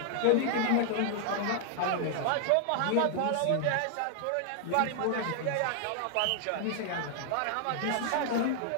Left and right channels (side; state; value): both; different; correlation 0.00